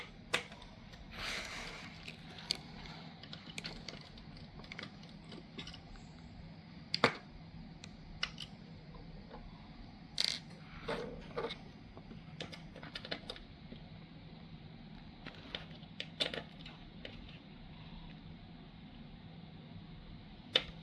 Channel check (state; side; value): identical; both; correlation 1.00